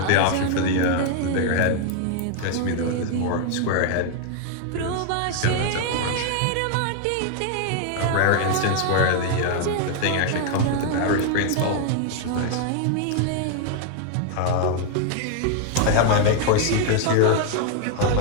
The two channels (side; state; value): both; different; correlation 0.00